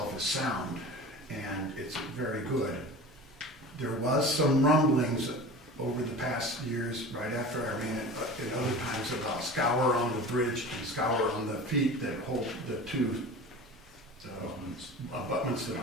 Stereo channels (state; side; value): normal; both; correlation 0.35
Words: is sound and it's very good. There was some rumblings over the past years, right after Irene, but in other times about scour on the bridge and scour on the feet that hold the two abutments,